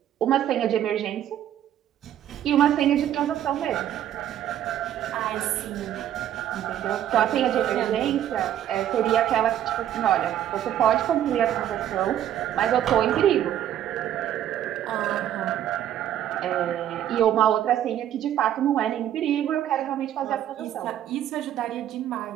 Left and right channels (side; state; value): left; quieter; 11.2 dB